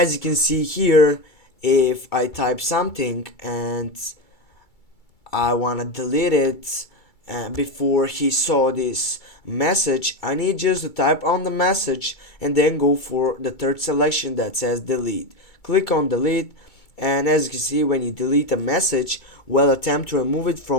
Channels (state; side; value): late; right; 2.3 ms